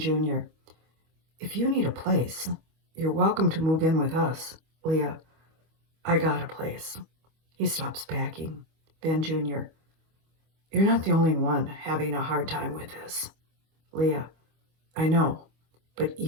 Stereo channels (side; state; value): left; late; 25 ms